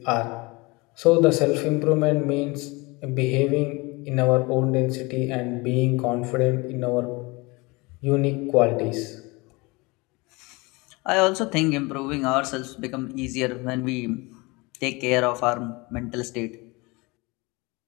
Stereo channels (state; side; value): quieter; right; 25.2 dB